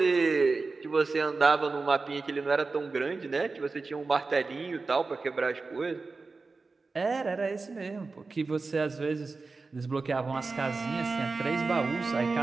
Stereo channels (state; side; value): quieter; left; 4.0 dB